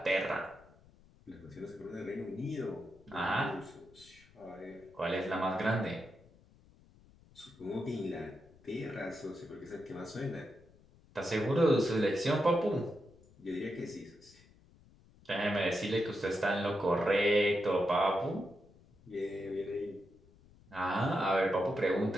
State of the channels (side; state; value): left; noise; rumble, 27 dB below the sound